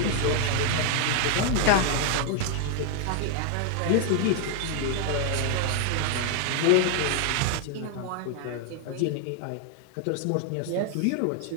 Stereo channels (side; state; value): both; different; correlation 0.00